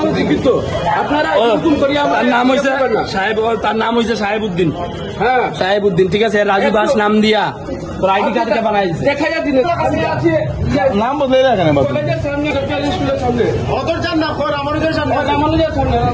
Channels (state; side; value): identical; both; correlation 1.00